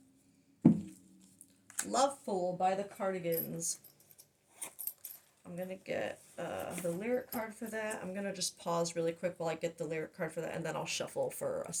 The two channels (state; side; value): identical; both; correlation 1.00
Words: Love Fool by the Cardigans. I'm going to get the lyric card for that. I'm going to just pause really quick while I get the lyric card for that, and then I'll shuffle for a